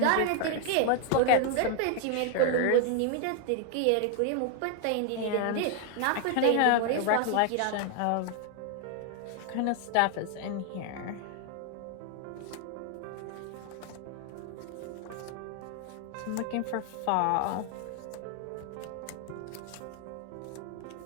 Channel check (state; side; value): different; both; correlation 0.00